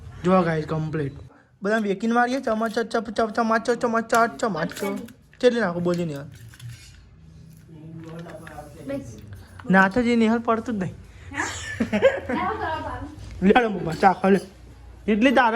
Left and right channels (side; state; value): both; identical; correlation 1.00